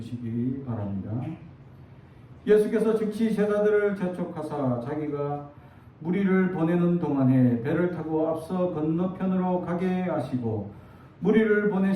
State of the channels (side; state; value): both; identical; correlation 1.00